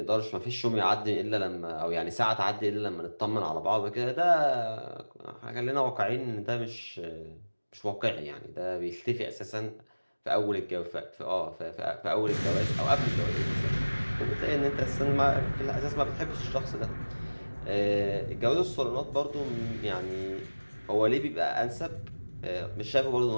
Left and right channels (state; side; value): inverted; both; correlation -1.00